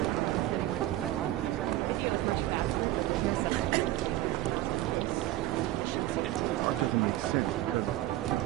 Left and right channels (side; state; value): left; quieter; 15.3 dB